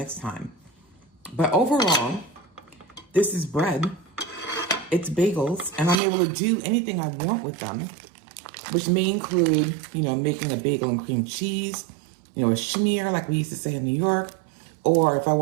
time. But overall, this is bread, it's bagels, and I'm able to do anything I want with them, which may include, you know, making a bagel and cream cheese, you know, a schmear like we used to say in New York, or if I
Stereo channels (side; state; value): left; drops out; at 6.0 s